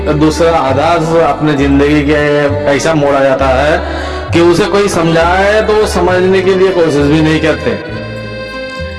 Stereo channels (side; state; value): both; identical; correlation 1.00